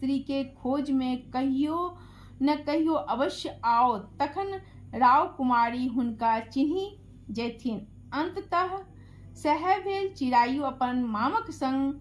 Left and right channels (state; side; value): identical; both; correlation 1.00